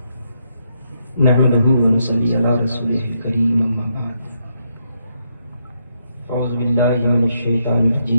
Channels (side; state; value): both; inverted; correlation -0.78